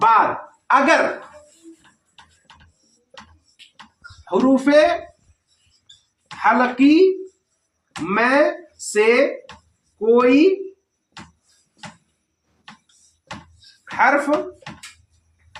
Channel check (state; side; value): identical; both; correlation 1.00